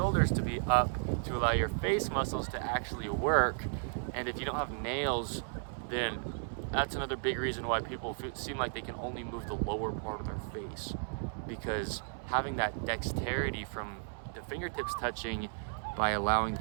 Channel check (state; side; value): silent; left; 55 dB below the other